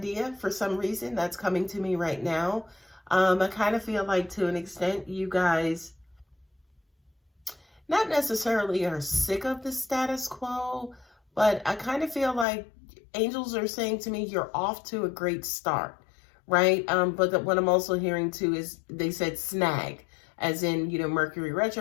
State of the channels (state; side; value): drops out; right; at 12.5 s